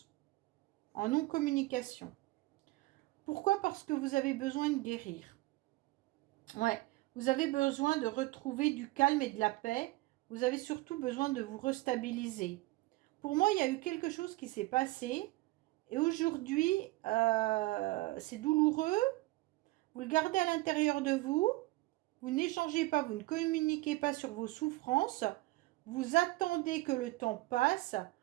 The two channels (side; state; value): left; quieter; 20.4 dB